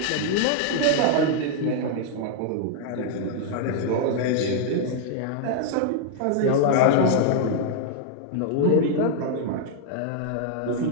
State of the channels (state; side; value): different; both; correlation 0.00